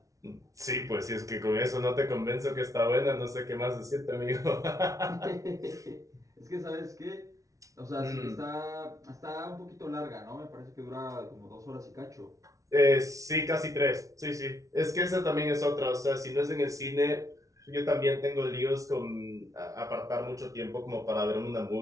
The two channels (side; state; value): left; late; 0.16 ms